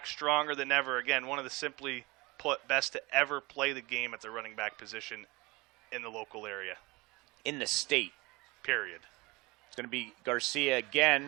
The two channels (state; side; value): quieter; left; 23.8 dB